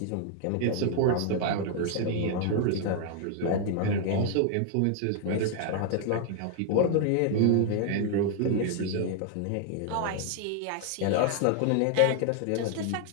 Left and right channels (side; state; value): both; different; correlation 0.00